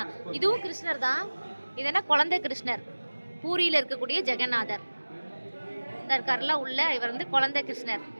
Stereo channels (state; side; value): inverted; both; correlation -1.00